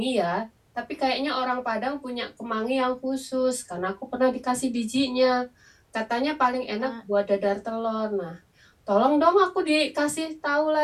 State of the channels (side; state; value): both; identical; correlation 1.00